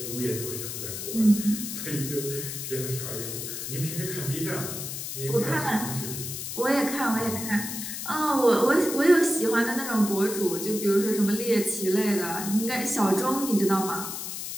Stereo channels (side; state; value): left; noise; hiss, 6 dB below the sound